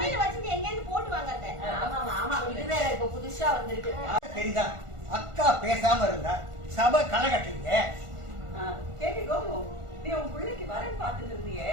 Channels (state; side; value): late; left; 1.4 ms